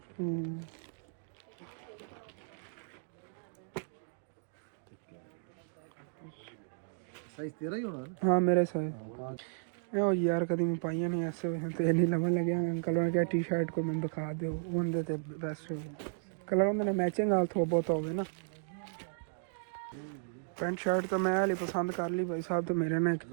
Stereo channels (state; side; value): silent; left; digital silence